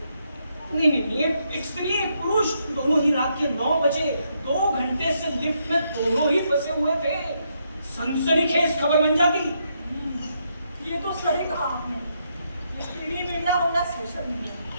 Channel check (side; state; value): both; inverted; correlation -0.78